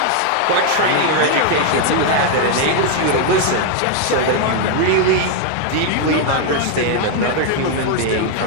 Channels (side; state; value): both; different; correlation 0.00